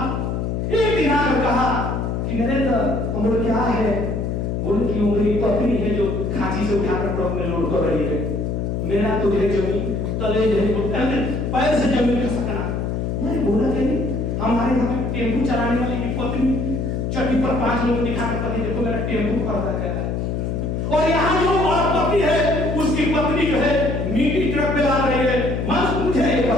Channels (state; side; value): noise; left; hum, 1 dB below the sound